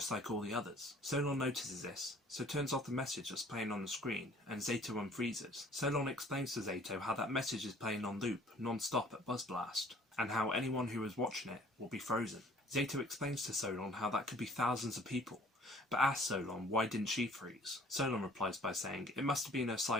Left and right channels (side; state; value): both; normal; correlation 0.55